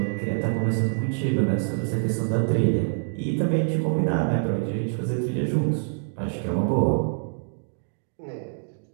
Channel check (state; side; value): silent; left; digital silence